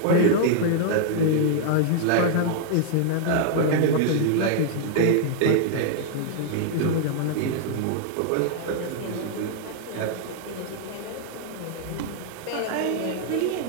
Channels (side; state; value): both; different; correlation -0.01